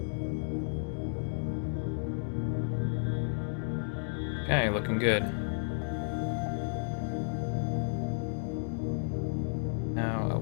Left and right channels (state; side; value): silent; right; digital silence